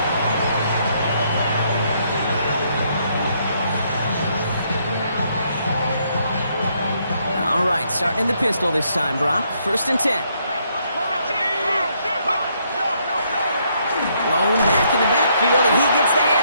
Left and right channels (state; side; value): inverted; both; correlation -0.72